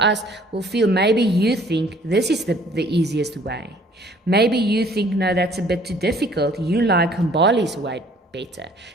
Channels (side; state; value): both; normal; correlation 0.57